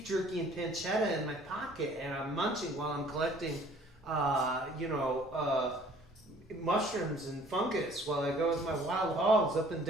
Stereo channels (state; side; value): normal; both; correlation 0.55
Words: jerky and pancetta in my pocket, and I'm munching while I'm collecting, mushrooms and fungus while I go with my wild hogs up and